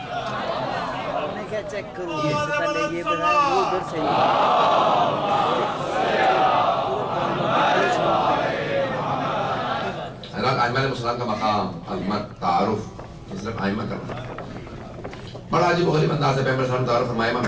چیک کروں اس سے پہلے یہ بتائیں وہ ادھر سے حضرت ائمہ علیہ السلام کا مقام عظمت تعارف صرف ائمہ کرنا بڑا عجیب و غریب انداز ہے. پیغمبر صلی اللہ علیہ وسلم تعارف فرمایا. امام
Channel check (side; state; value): both; identical; correlation 1.00